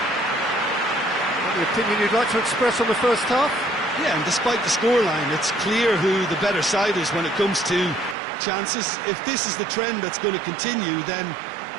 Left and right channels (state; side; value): drops out; left; at 8.2 s